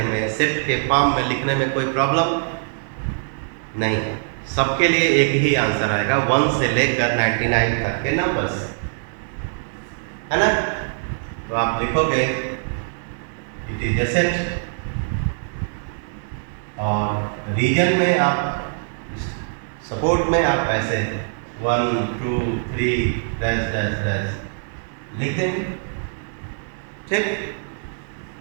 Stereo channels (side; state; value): left; silent; digital silence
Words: में, सेट के फॉर्म में लिखने में कोई प्रॉब्लम नहीं है? सबके लिए एक ही आंसर आएगा, 1 से लेकर 99 तक के नंबर्स, है ना? तो आप लिखोगे इट इज ए सेट, और रीजन में आप, सपोर्ट में आप ऐसे 1 2 3 डैश डैश डैश लिख देंगे, ठीक?